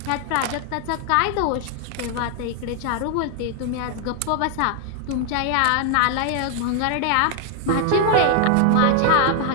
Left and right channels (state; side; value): different; both; correlation 0.00